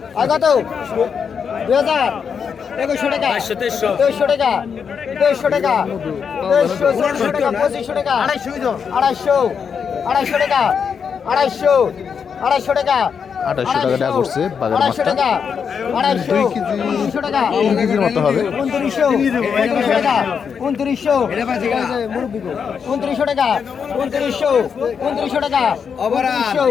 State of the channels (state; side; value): quieter; right; 6.6 dB